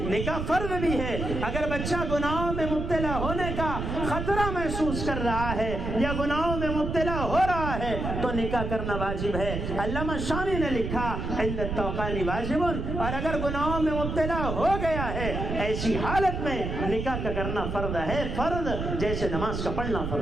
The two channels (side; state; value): right; noise; rumble, 4 dB below the sound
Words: نکاح فرض بھی ہے۔ اگر بچہ گناہوں میں مبتلا ہونے کا خطرہ محسوس کر رہا ہے یا گناہوں میں مبتلا ہو رہا ہے تو نکاح کرنا واجب ہے۔ علامہ شامی نے لکھا عند التوقان واجب، اور اگر گناہوں میں مبتلا ہو گیا ہے ایسی حالت میں نکاح کا کرنا فرض ہے، فرض جیسے نماز کا پڑھنا